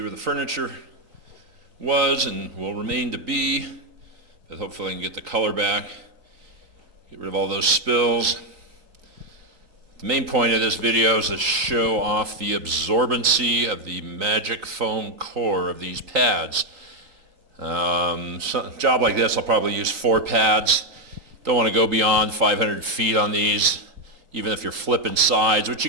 where the furniture was and will remain to be, but hopefully I can get the color back, get rid of all those spills. The main point of this video is to show off the absorbency of the magic foam core of these pads. A job like this, I'll probably use 4 pads. Don't want to go beyond 500 feet on these, even if you're flipping sides, which you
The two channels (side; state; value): left; late; 3.9 ms